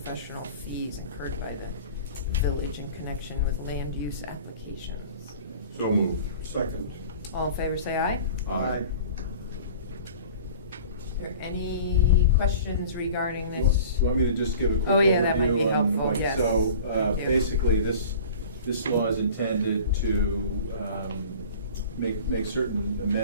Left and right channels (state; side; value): inverted; both; correlation -0.42